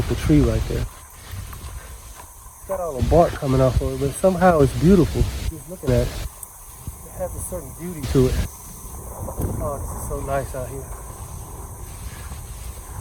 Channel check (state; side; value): identical; both; correlation 1.00